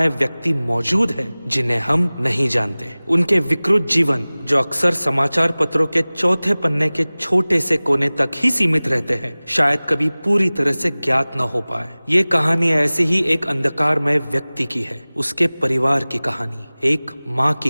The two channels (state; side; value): inverted; both; correlation -0.99